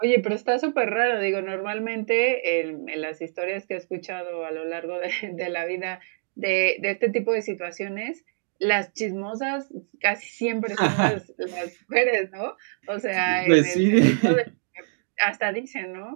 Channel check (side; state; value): left; silent; digital silence